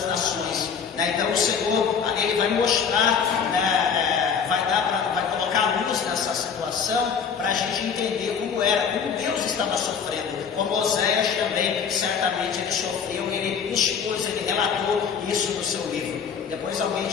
nações. Então o Senhor, ele vai mostrar, vai colocar a luz essa situação para a gente entender como era, como Deus estava sofrendo. Como Oséias também, certamente ele sofreu, ele expôs, ele relatou isso no seu livro. Depois alguém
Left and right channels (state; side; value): quieter; right; 6.7 dB